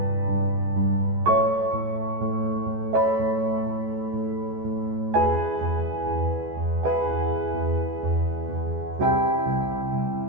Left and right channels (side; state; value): left; late; 14 ms